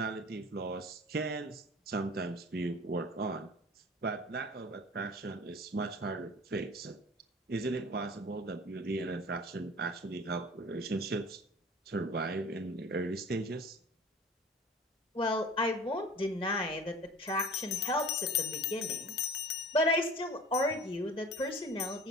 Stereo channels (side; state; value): both; normal; correlation 0.42